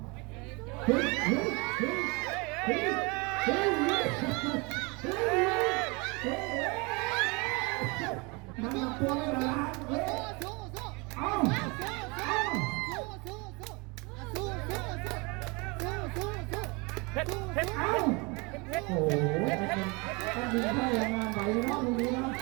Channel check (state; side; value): quieter; left; 28.3 dB